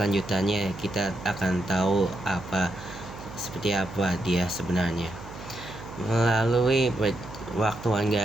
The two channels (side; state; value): right; noise; hum, 14 dB below the sound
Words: kita akan tahu seperti apa dia sebenarnya. Melalui waktuan